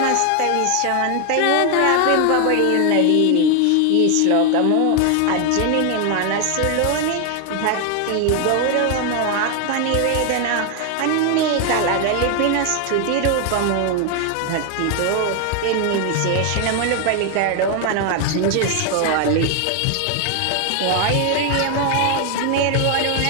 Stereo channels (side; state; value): both; different; correlation 0.00